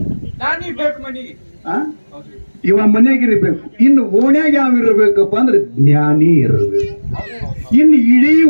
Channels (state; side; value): inverted; both; correlation -1.00